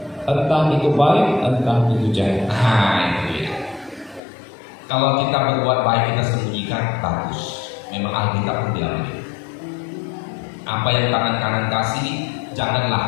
Entah itu baik, entah itu jahat. Nah, itu dia. Kalau kita berbuat baik kita sembunyikan, bagus. Memang Alkitab pun bilang begitu. Apa yang tangan kanan kasih,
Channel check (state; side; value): drops out; right; at 4.2 s